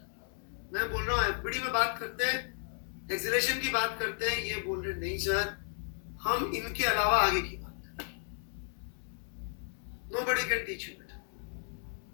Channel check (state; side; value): silent; right; 55 dB below the other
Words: मैं बोल रहा हूँ एफबीडी में बात करते हैं, एक्सेलरेशन की बात करते हैं, ये बोल रहे नहीं सर हम इनके अलावा आगे की बात करें। नोबडी कैन टीच यू बेटा।